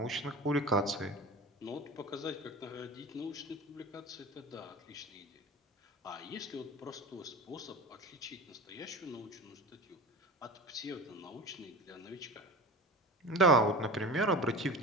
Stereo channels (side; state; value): both; normal; correlation 0.32